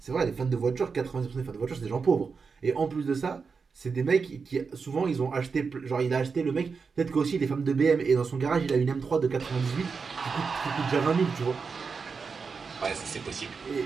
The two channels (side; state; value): left; quieter; 5.2 dB